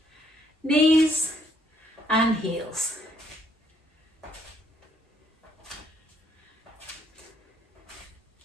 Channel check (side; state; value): both; normal; correlation 0.68